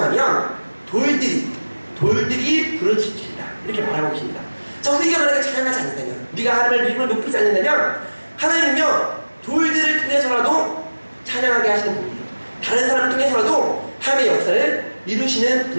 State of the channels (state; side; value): inverted; both; correlation -1.00